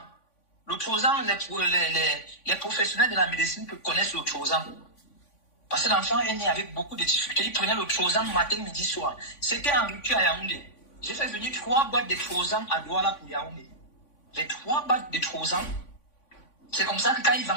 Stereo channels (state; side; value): late; right; 3.5 ms